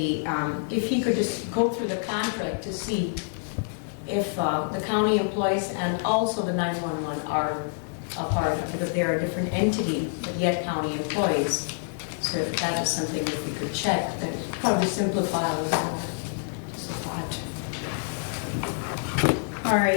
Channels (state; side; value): silent; right; digital silence